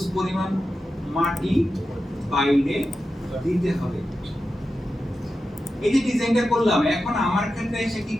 পরিমাণ মাটি বাইরে দিতে হবে। এই যে ডিজাইনটা করলাম, এখন আমার ক্ষেত্রে এসে কি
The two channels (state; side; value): normal; both; correlation 0.91